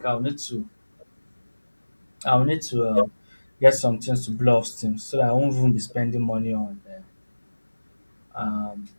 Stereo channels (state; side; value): inverted; both; correlation -1.00